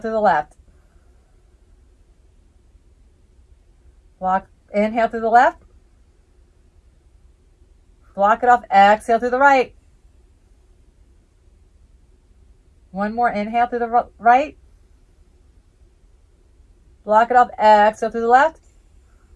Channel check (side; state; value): both; identical; correlation 1.00